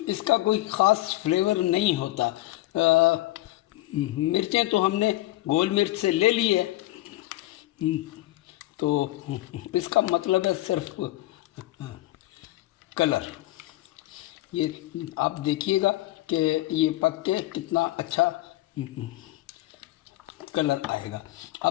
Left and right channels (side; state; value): right; quieter; 17.1 dB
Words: इसका कोई ख़ास फ्लेवर नहीं होता। मिर्चें तो हमने गोल मिर्च से ले ली है, तो इसका मतलब है सिर्फ कलर। ये आप देखिएगा कि ये पक के कितना अच्छा कलर आएगा।